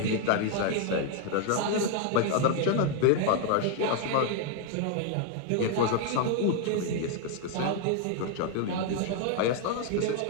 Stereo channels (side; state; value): both; different; correlation 0.00